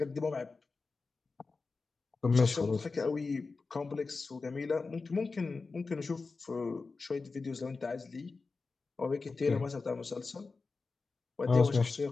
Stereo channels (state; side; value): quieter; right; 4.1 dB